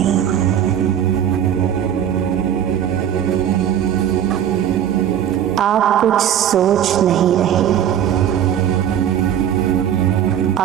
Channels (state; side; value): quieter; left; 9.8 dB